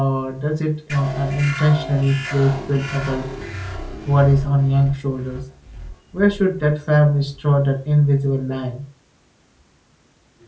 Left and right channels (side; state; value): both; identical; correlation 1.00